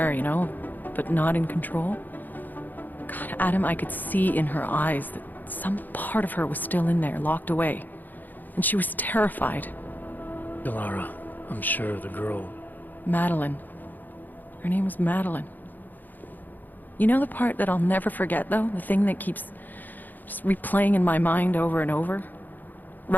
you know, but not in control. God, Adam, I could see in her eyes that some part of her was still in there, locked away. And she was terrified. Delara, I'm sure the girl... Madeline. Her name was Madeline. You know the part that I'll never forget, though? The thing that keeps just replaying in my mind over and over?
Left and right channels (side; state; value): right; late; 0.086 ms